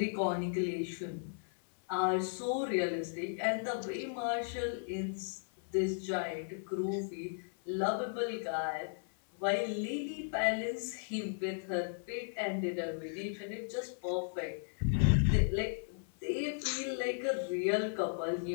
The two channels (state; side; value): silent; right; 54 dB below the other